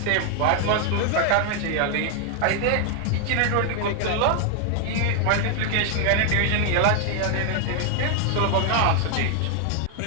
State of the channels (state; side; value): different; both; correlation 0.00